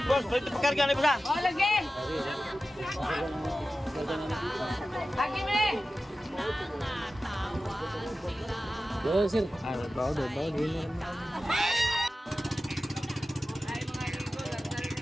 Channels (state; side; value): normal; both; correlation 0.94